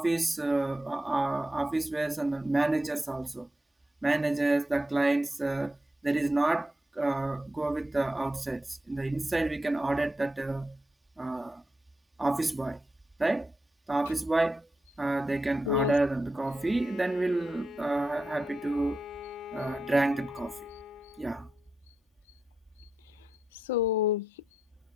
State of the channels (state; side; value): normal; both; correlation 0.87